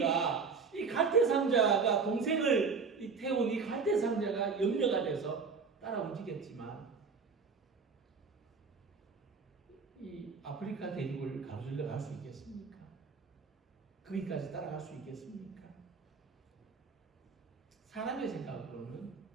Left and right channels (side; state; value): left; quieter; 5.1 dB